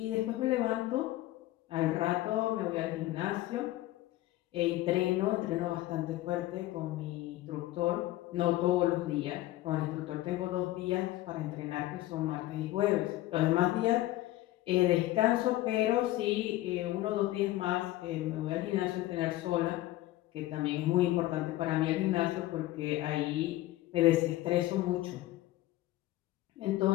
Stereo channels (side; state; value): right; quieter; 16.3 dB